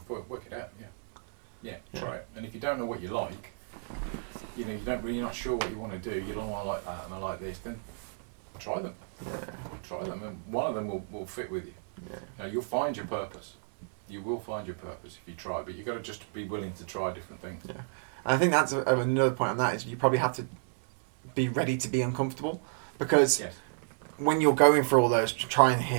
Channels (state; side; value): silent; left; digital silence